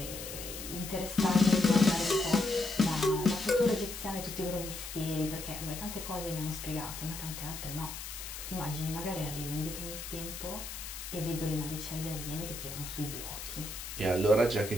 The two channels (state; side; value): noise; left; hiss, 9 dB below the sound